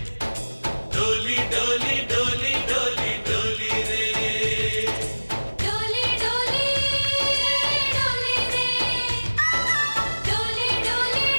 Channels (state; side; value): inverted; both; correlation -1.00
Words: डोली डोली डोली डोली डोली रे डोली डोली डोली रे डोली डोली